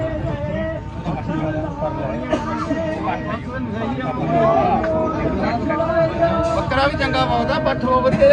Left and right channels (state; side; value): identical; both; correlation 1.00